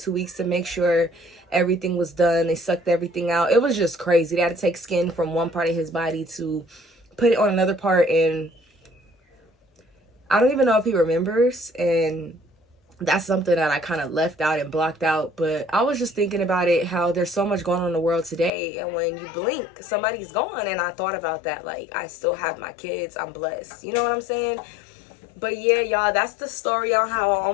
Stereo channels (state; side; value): drops out; right; at 18.5 s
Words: weeks to make sure everything was done. They sucked everything out. It was just crazy. They had to take skin from one part of his body to put it on another part, and I don't even know if he remembers, and that's something that I kind of left out and blocked out. But I was just thinking about it, how there's so much going on in the world today, and when you blink, somebody's gone. And I thought about that. Like, I still have my kids. I'm blessed. You know what I'm saying? But yeah, y'all, that's the story on how I